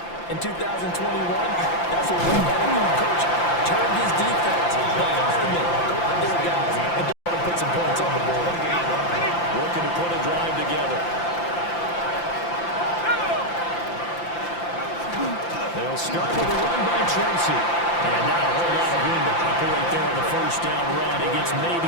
in 2021, that's what one NFL coach turned his defense. The firemen, go out there, guys, and don't put some points on the board. Looking to put a drive together. They'll start with a run by Tracy. And not a whole lot of room to operate there on the first down run. He gets maybe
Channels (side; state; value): right; late; 5.8 ms